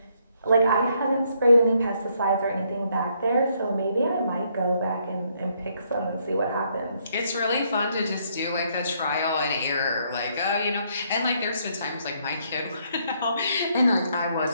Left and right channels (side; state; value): both; inverted; correlation -0.71